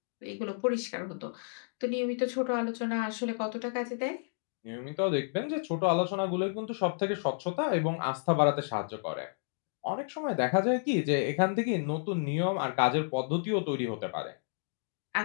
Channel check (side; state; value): right; silent; digital silence